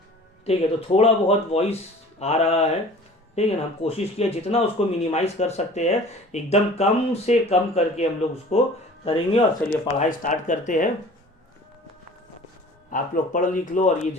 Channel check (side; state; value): both; normal; correlation 0.45